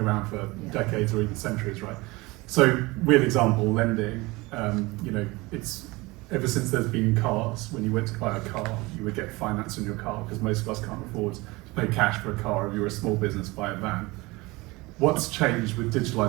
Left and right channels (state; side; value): quieter; left; 22.8 dB